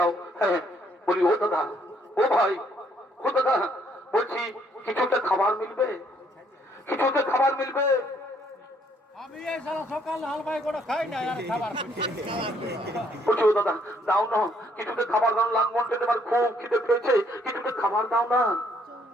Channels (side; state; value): both; normal; correlation 0.67